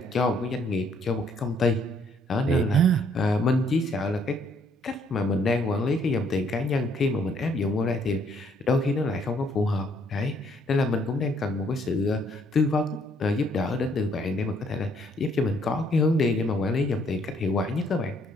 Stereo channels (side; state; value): both; normal; correlation 0.66